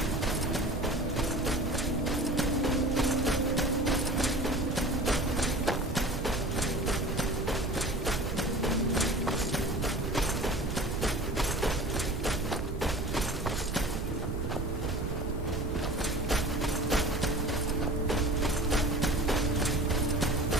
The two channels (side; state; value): right; noise; rumble, 3 dB below the sound